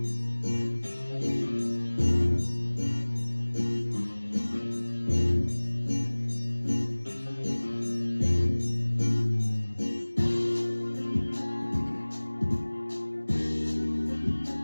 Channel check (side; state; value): both; inverted; correlation -1.00